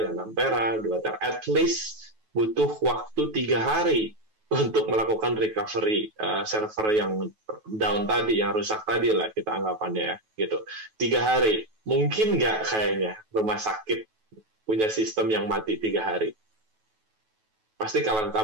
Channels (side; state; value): left; late; 9.2 ms